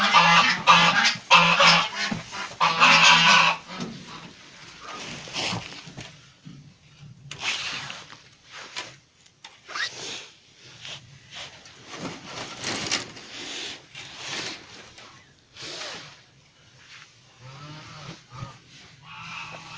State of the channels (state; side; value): identical; both; correlation 1.00